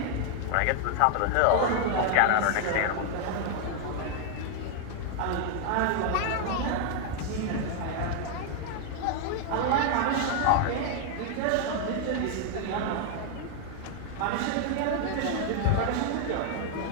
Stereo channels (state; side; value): different; both; correlation 0.00